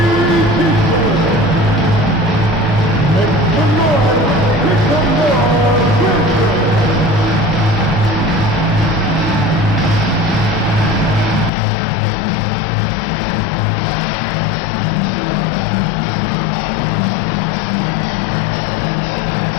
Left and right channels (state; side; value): drops out; right; at 11.5 s